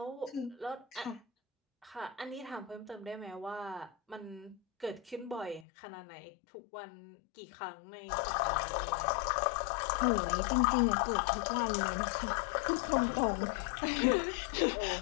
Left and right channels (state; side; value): drops out; right; at 5.7 s